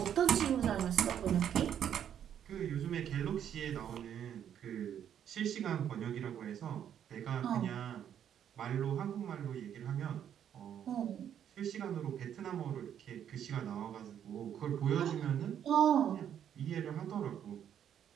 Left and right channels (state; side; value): quieter; left; 9.4 dB